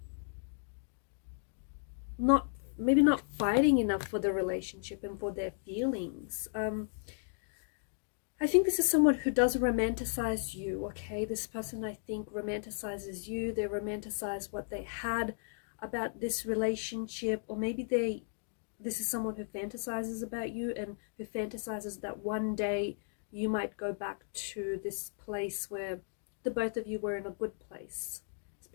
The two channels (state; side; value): silent; right; digital silence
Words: maybe not fighting enough for the relationship and for their feelings. I think this is someone who does romanticize you, okay? This person, I think, romanticizes you. They romanticize what they had about this relationship, or maybe this is someone who fantasizes about you and who fantasizes that one day you might go back to this place where the both of you were in a good place,